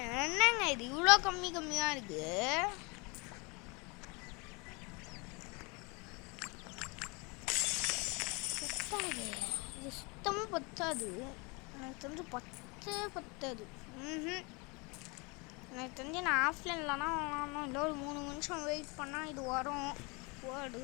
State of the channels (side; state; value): right; quieter; 29.0 dB